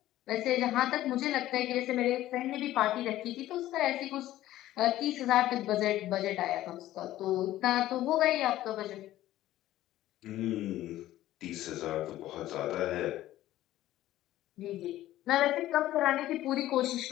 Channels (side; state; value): right; quieter; 14.5 dB